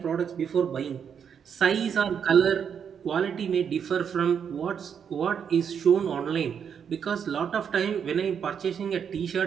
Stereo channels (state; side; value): quieter; left; 7.5 dB